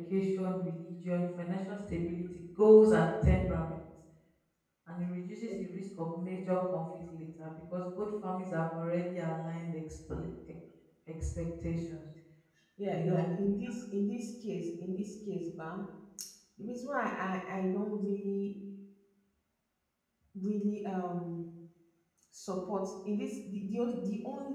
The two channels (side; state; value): both; identical; correlation 1.00